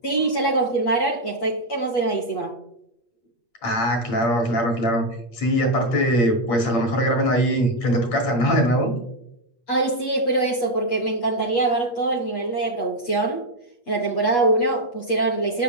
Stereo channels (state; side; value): late; right; 8.3 ms